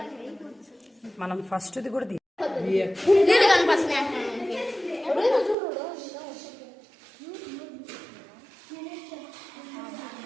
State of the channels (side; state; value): left; drops out; at 5.6 s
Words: మనం ఫస్ట్ది కూడా